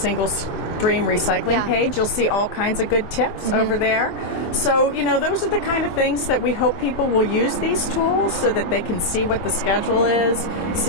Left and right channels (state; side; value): late; right; 23 ms